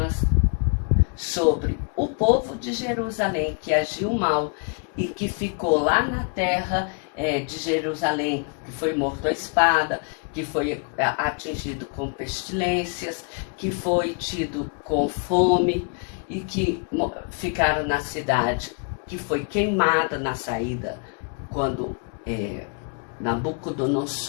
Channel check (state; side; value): quieter; right; 39.8 dB